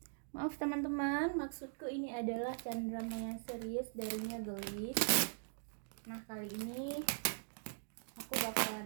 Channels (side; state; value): left; silent; digital silence